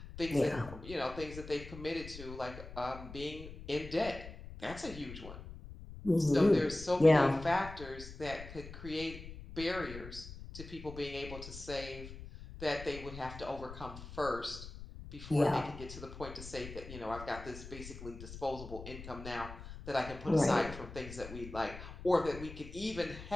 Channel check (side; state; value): left; noise; rumble, 12 dB below the sound